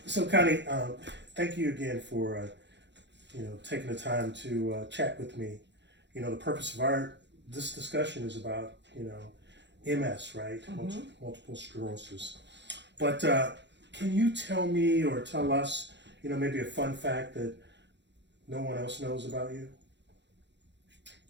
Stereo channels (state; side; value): late; left; 0.52 ms